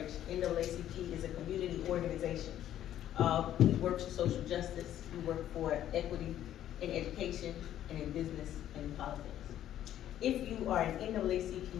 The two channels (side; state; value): right; quieter; 11.7 dB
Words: NAACP is a community organization. We work for social justice, we work for equity in education, and in business, and in politics. If you are an